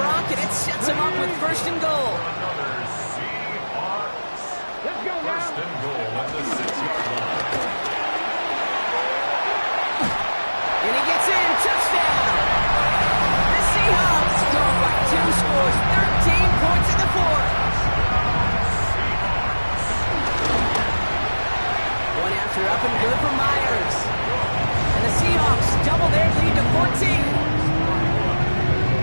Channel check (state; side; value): inverted; both; correlation -1.00